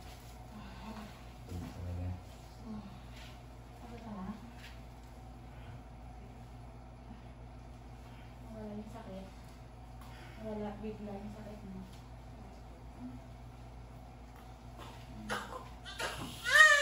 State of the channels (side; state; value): both; identical; correlation 1.00